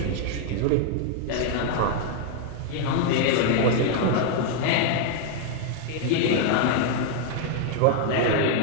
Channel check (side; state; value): both; different; correlation 0.00